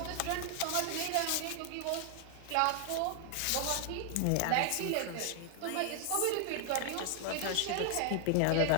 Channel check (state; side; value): different; both; correlation 0.00